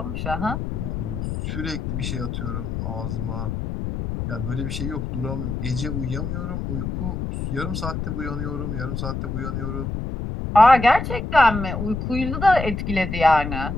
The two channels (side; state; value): left; noise; rumble, 4 dB below the sound